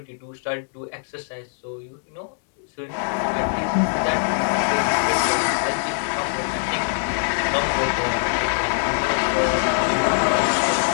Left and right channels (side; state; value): right; silent; digital silence